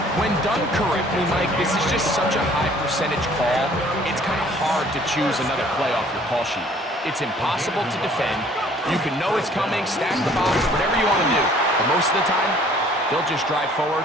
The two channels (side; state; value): both; normal; correlation 0.56